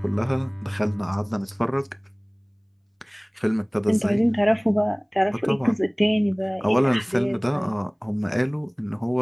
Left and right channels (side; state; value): both; identical; correlation 1.00